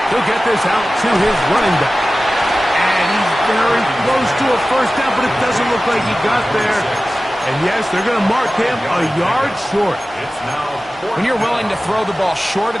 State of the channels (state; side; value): normal; both; correlation 0.96